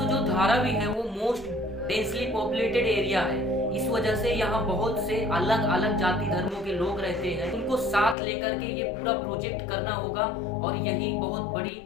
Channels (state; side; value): drops out; right; at 8.2 s